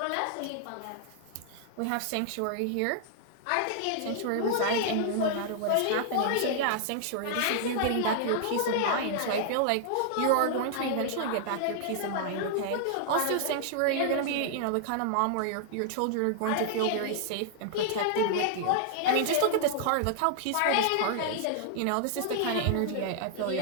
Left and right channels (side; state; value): both; different; correlation -0.01